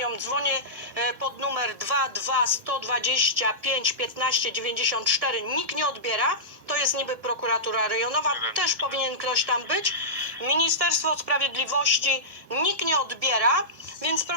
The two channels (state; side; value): late; left; 1.7 ms